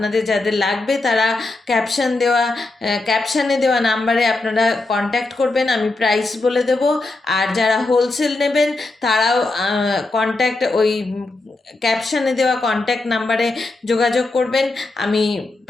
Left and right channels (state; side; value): quieter; right; 3.2 dB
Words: যাদের লাগবে তারা ক্যাপশানে দেওয়া নাম্বারে আপনারা কন্ট্যাক্ট করবেন, আমি প্রাইস বলে দেব। আর যারা হোলসেল নেবেন তারাও ওই ক্যাপশানে দেওয়া কন্ট্যাক্ট নাম্বারে যোগাযোগ করবেন, আমি